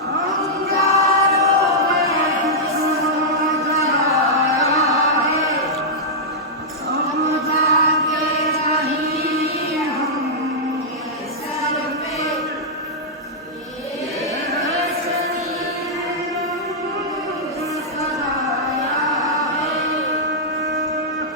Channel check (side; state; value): both; normal; correlation -0.09